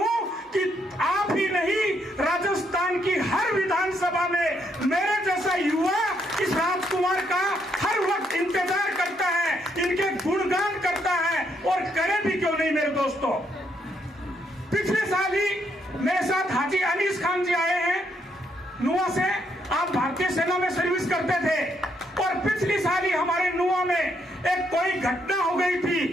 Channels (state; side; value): normal; both; correlation 0.74